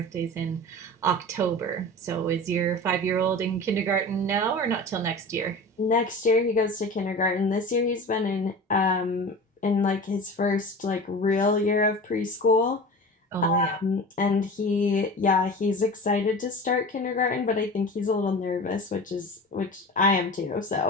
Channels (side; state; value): both; normal; correlation 0.34